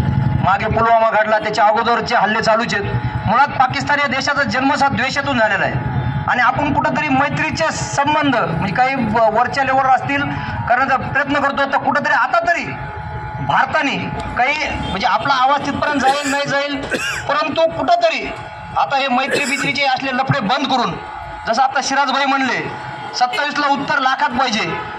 मागे पुलवामा घडला, त्याच्या अगोदरचे हल्ले चालूच आहेत. मुळात पाकिस्तान या देशाचा जन्मसात द्वेषातून झालेला आहे आणि आपण कुठंतरी मैत्रीचे संबंध म्हणजे काही वरच्या लेवलवर असतील करण्याचा प्रयत्न करतो तर कुठंतरी आता तरी भारताने काही म्हणजे आपला आवाज तिथपर्यंत जाईल नाही जाईल परंतु कुठंतरी आता हे मैत्री असले लफडे बंद करून जसं आता सिराजभाई म्हणले 27ला उत्तर लाखात पाहिजे.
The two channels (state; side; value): identical; both; correlation 1.00